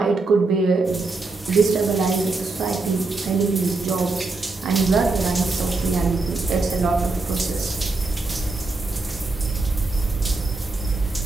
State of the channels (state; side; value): quieter; left; 3.6 dB